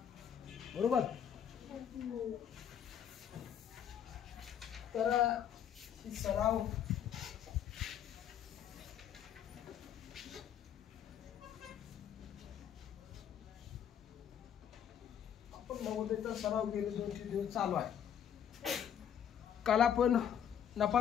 बरोबर? तर ही सराव आपण नवोदयचा सराव गेले 2-3 दिवस चालू आहे. काल आपण नफा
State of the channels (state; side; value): quieter; right; 9.0 dB